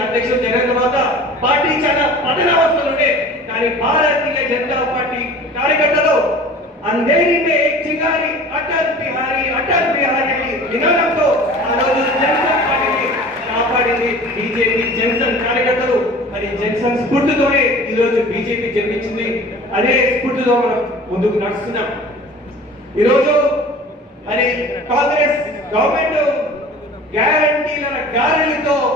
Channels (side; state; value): both; normal; correlation 0.42